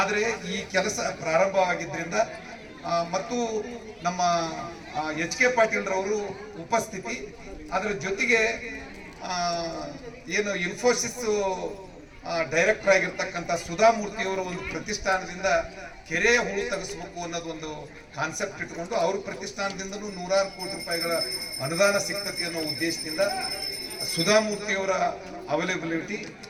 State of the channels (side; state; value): both; identical; correlation 1.00